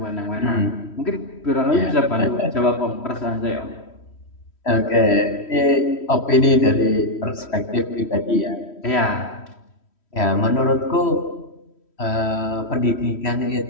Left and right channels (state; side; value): late; right; 3.1 ms